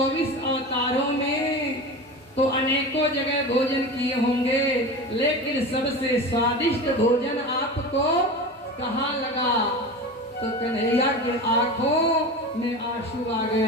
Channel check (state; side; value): normal; both; correlation 0.29